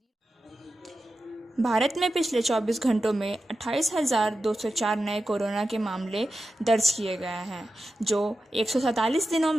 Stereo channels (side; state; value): both; normal; correlation 0.91